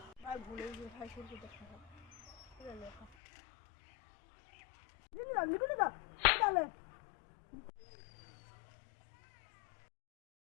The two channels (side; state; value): right; drops out; at 3.1 s